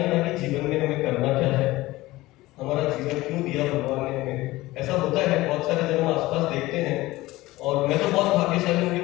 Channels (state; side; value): quieter; right; 18.6 dB